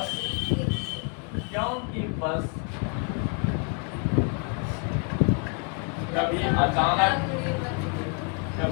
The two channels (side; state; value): right; quieter; 37.0 dB